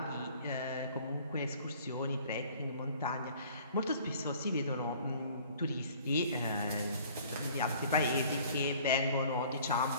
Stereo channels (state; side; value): inverted; both; correlation -0.52